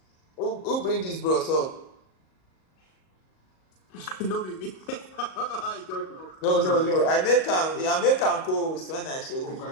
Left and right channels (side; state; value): right; late; 38 ms